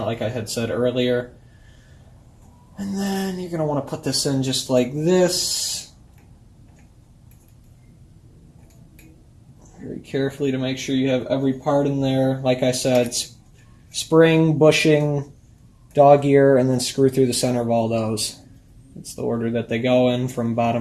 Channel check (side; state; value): both; identical; correlation 1.00